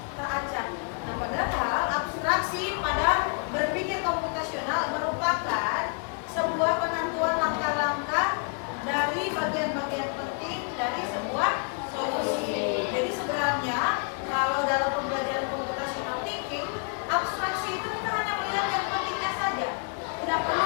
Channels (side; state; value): right; quieter; 38.5 dB